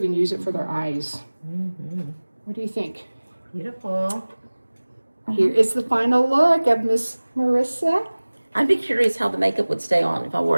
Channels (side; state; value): both; inverted; correlation -1.00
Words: use it for their eyes. What do you think? Beautiful. Here is the final look of Miss Marissa. I'd be curious how the makeup would stay on if I wore